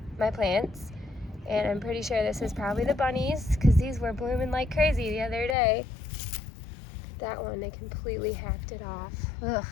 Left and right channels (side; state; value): right; drops out; at 5.6 s